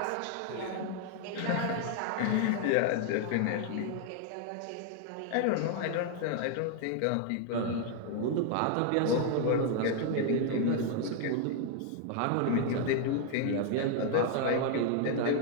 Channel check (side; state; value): both; different; correlation 0.00